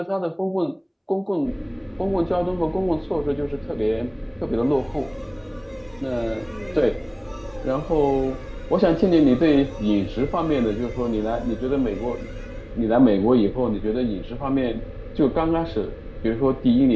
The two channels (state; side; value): identical; both; correlation 1.00